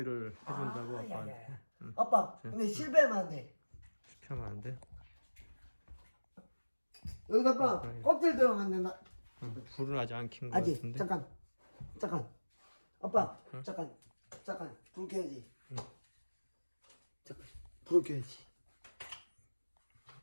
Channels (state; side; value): inverted; both; correlation -1.00